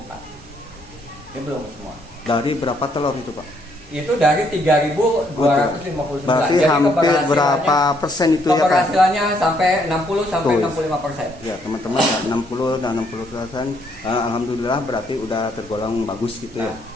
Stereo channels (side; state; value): both; normal; correlation 0.70